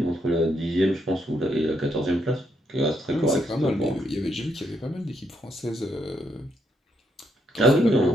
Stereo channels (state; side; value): normal; both; correlation 0.76